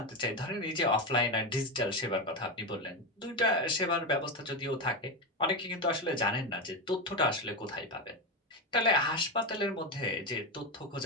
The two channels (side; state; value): both; normal; correlation 0.14